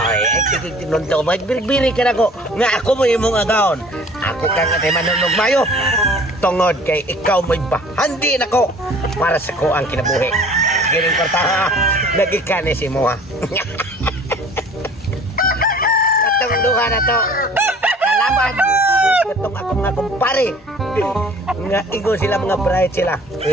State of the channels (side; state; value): both; normal; correlation 0.49